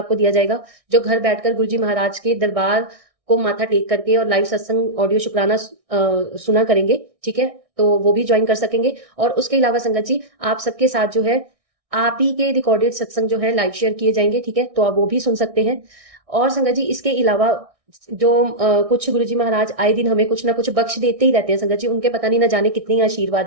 दिया जाएगा। जो घर बैठकर गुरुजी महाराज के दरबार को माथा टेक करके और लाइव सत्संग ऑडियो शुक्राना सुना करेंगे, ठीक है, तो वो भी ज्वाइन कर सकेंगे। और उसके अलावा संगत जी आप सबके साथ जो है आप ही के रिकॉर्डेड सत्संग जो है लाइव शेयर किए जाएंगे, ठीक है, तो आप वो भी सुन सकते हैं। और संगत जी इसके अलावा जो कुछ गुरुजी महाराज आए दिन हमें कुछ ना कुछ बख्श देते ही रहते हैं संगत जी, उनके पता नहीं ना जाने कितनी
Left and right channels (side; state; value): left; late; 1.6 ms